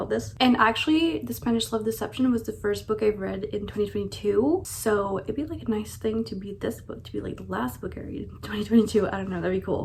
this. And actually, The Spanish Love Deception was the first book I've read in 2022, so it'd be like a nice thing to be this book, to be like the last book I read in 2022. I don't know, that'd be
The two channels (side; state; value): both; identical; correlation 1.00